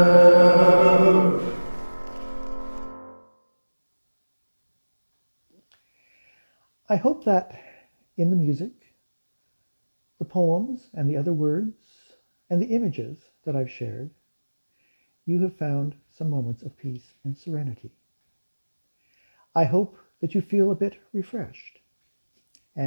I hope that in the music, the poems and the other words and the images that I've shared, you have found some moments of peace and serenity. I hope that you feel a bit refreshed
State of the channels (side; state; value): both; inverted; correlation -1.00